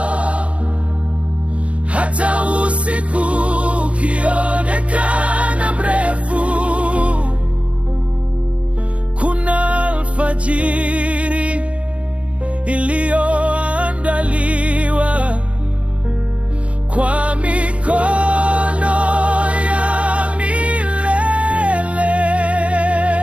Hata usiku ukionekana mrefu, kuna alfajiri iliyoandaliwa kwa mikono ya milele.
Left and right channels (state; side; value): late; left; 0.062 ms